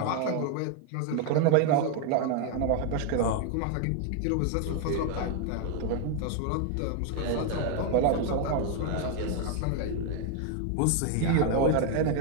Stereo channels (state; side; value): different; both; correlation 0.00